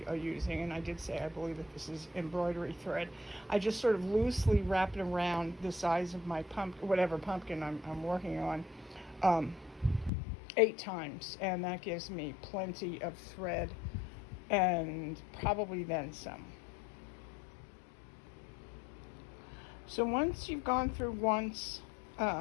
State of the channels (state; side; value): drops out; right; at 10.1 s